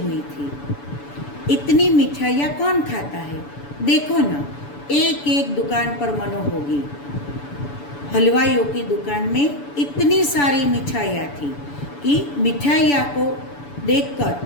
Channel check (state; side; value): late; right; 7.0 ms